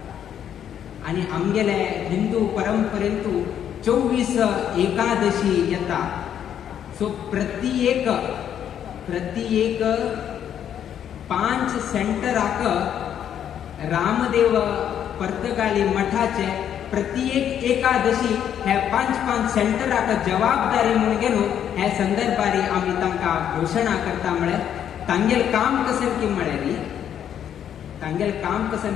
आणि आमगेले हिंदू परंपरेंतू 24 एकादशी येता. सो प्रति एक 5 सेंटराक रामदेव पर्तगाळी मठाचे प्रत्येक एकादशी हे 5 सेंटराक जबाबदारी म्हणून घेऊन ह्या संदर्भारी आम्ही तांकां घोषणा करता. म्हळ्यार तांगेल काम कसन की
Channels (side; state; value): right; quieter; 9.5 dB